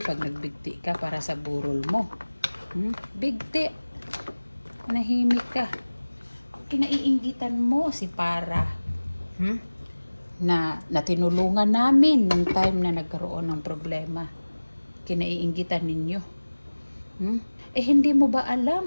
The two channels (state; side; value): inverted; both; correlation -1.00